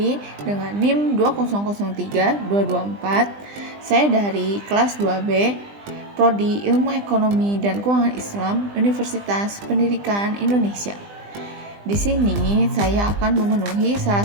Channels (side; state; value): left; late; 20 ms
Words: dengan NIM 2003224. Saya dari kelas 2B, Prodi Ilmu Ekonomi dan Keuangan Islam, Universitas Pendidikan Indonesia. Di sini saya akan memenuhi salah